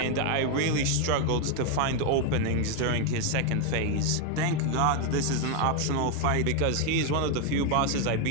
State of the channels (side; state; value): both; different; correlation 0.01